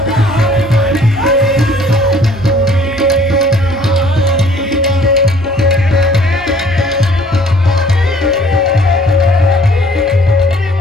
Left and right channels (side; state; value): left; noise; rumble, 26 dB below the sound